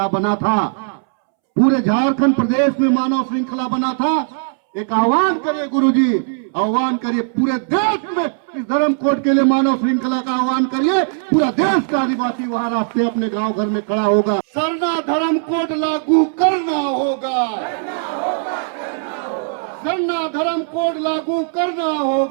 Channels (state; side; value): silent; left; 67 dB below the other